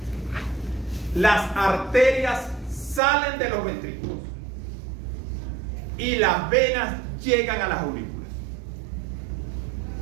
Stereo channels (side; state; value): left; drops out; at 3.0 s